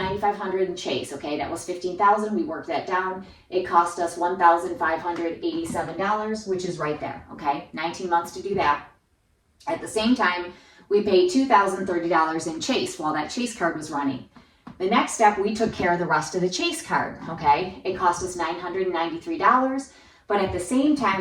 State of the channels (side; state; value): both; identical; correlation 1.00